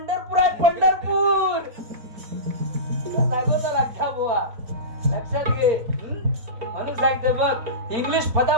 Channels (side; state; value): left; late; 4.3 ms